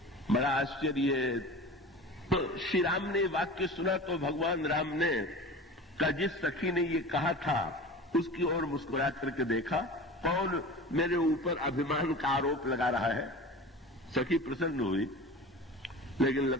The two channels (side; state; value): both; normal; correlation 0.35